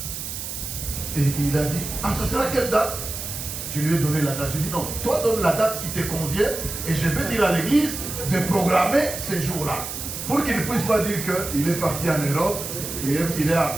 Et il a dit, ah, ça sera quelle date? Je lui ai donné la date. J'ai dit, non, toi donne la date qui te convient et je vais dire à l'église de programmer ces jours-là. Pour qu'il ne puisse pas dire qu'il est parti en Europe et il est en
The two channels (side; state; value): right; noise; hiss, 7 dB below the sound